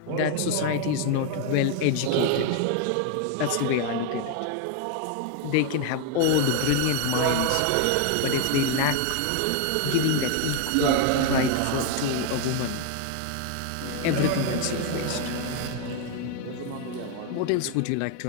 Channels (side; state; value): both; different; correlation 0.01